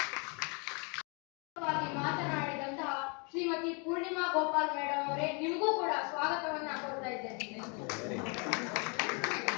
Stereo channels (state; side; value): quieter; right; 34.4 dB